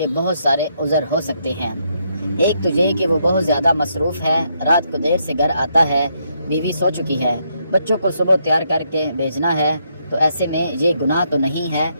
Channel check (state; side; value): inverted; both; correlation -0.76